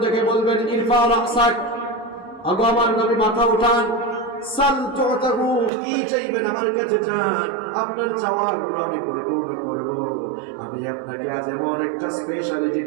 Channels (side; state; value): left; drops out; at 5.7 s